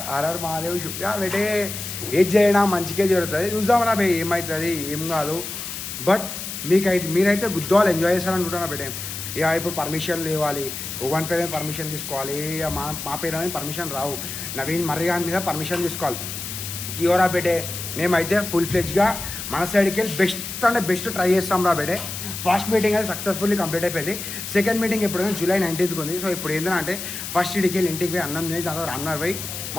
ఆర్ఆర్ మహాదేవ్ చూపి బెటే, ఏది చేయడం మంచిగా జరుగుతుంది, చూద్దామరా బే ఏమవుతుంది ఏం కాదు. బట్ మీరైతే గుద్దవాళ్ళు ఎంజాయ్ చేస్తారనుకుంటున్నా బెటే. ఇక ఇప్పుడు పర్మిషన్ ఇవ్వాలి, ఒకని పేరు మీద పర్మిషన్ తీసుకోవాలి, ఇక మా పేరు మీద పర్మిషన్ రావు, నవీన్ మర్రిగాన్ మీద పర్మిషన్ తీసుకోవాలి. జియోరా బెటే మేమైతే ఫుల్ ఫ్లెజ్గా మన సైడ్కి వెళ్ళి బెస్ట్ అంటే బెస్ట్ ట్రై చేస్తాం రా బెటే. ఫస్ట్ మీటింగ్ అయితే సక్సెస్ఫుల్లీ కంప్లీట్ అయిపోయింది. సెకండ్ మీటింగ్ ఎప్పుడైనా జూలై 19th ఉంది. సో ఇప్పుడు ఏంటంటే ఫస్ట్ ఇడికి వెళ్ళి ఇంటికి పోయి అన్నం తిని దాని తర్వాత రన్నర్ పోయి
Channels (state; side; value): noise; left; hiss, 7 dB below the sound